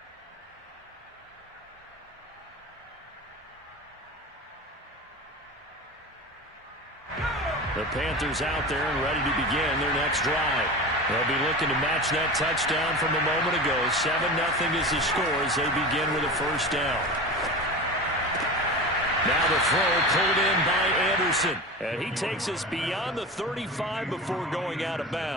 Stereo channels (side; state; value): both; normal; correlation 0.30